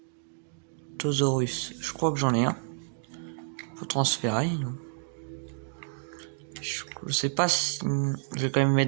Autosaurus, je crois que j'en ai un. Faut transférer, non? Je sais pas si... Je vais quand même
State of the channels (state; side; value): silent; left; digital silence